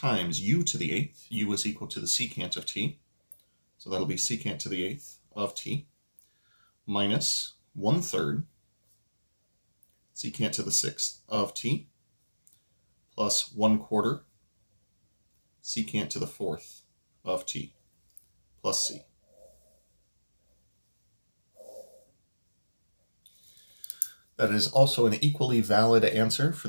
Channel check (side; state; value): both; inverted; correlation -1.00